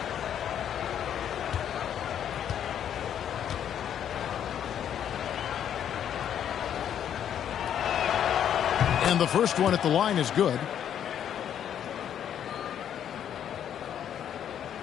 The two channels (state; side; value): quieter; right; 9.6 dB